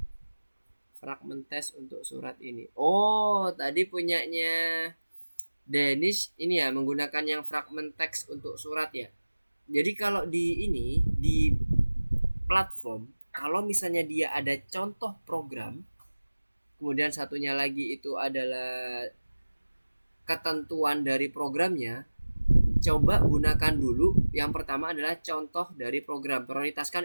Fragment test untuk surat ini. Oh, tadi punyanya Dennis ini ya menggunakan yang fragment teks untuk surat ya. Jadi kalau di ini di platform, kalau misalnya dia ada contoh program, kemudian satunya lagi itu adalah ketentuan dari programnya, coba gunakan dulu yang pertama adalah contoh dari program, prioritaskan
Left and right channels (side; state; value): both; inverted; correlation -1.00